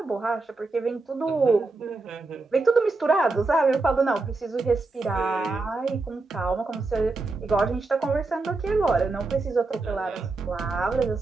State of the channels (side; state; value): left; quieter; 3.5 dB